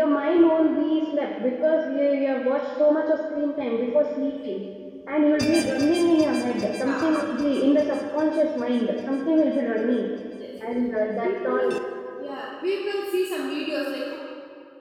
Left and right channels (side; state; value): both; identical; correlation 1.00